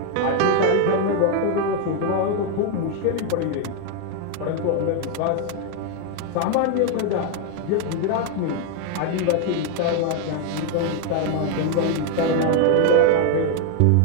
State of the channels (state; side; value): different; both; correlation 0.00